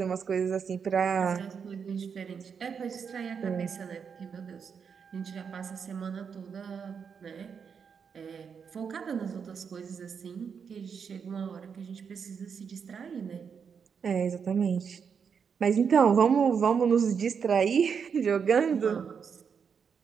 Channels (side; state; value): left; quieter; 6.6 dB